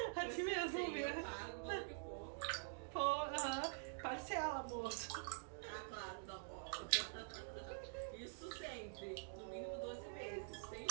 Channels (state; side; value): silent; left; digital silence